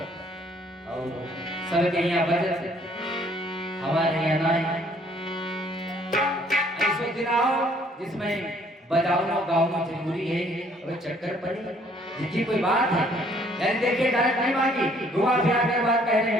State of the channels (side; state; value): both; normal; correlation 0.62